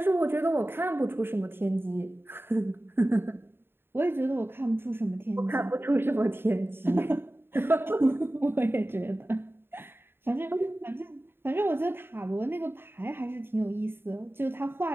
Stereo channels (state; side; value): late; left; 0.11 ms